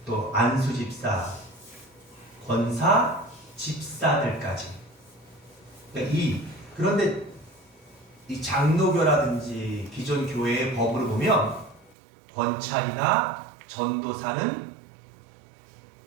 또 안수 집사, 권사, 집사들까지. 그런데 이 장로교라든지 기존 교회의 법으로 보면 권찰이나 전도사는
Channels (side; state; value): left; drops out; at 12.0 s